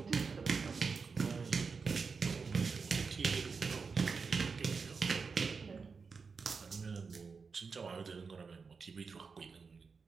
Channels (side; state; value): left; quieter; 5.0 dB